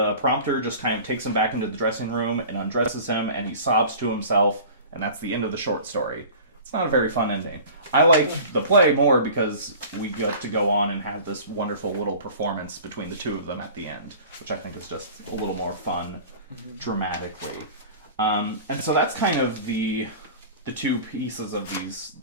prompter just kind of takes him back into the dressing room and undresses him, and he sobs to himself, and that's the end of the short story. It's not a very fun ending. I like the play more because we get to go on and have this wonderful little performance between the two of them at the end, which I think is just a little more fun dramatically. And so that's kind of the two pieces of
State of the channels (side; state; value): both; inverted; correlation -0.41